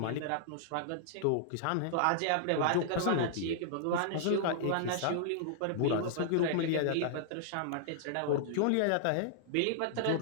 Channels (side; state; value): both; different; correlation -0.01